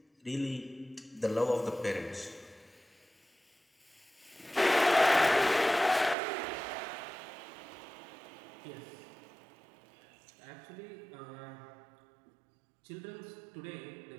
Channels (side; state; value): left; drops out; at 6.2 s